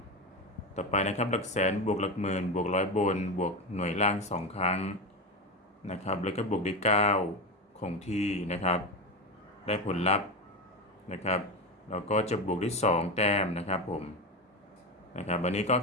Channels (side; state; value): both; normal; correlation 0.18